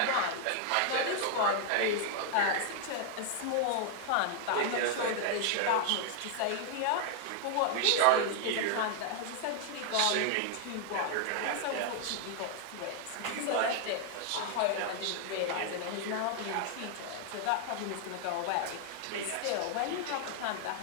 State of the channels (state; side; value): different; both; correlation 0.00